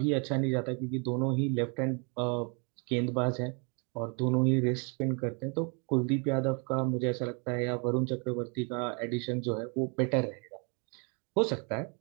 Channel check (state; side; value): quieter; left; 35.0 dB